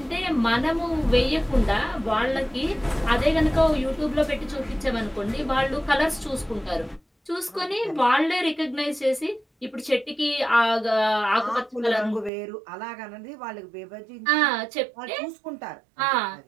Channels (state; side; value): drops out; left; at 12.3 s